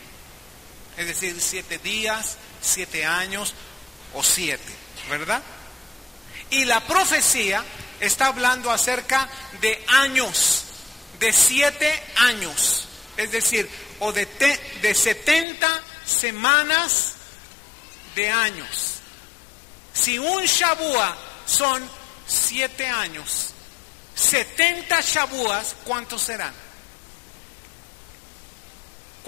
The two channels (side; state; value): right; drops out; at 15.5 s